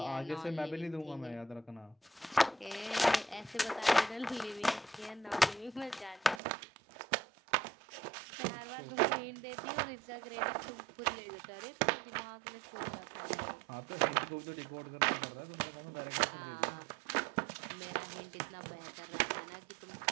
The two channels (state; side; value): drops out; left; at 6.4 s